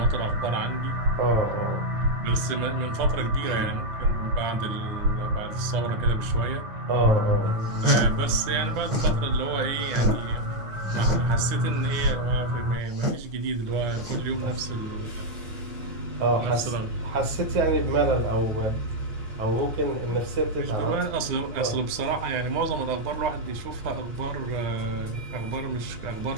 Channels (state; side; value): late; left; 9.8 ms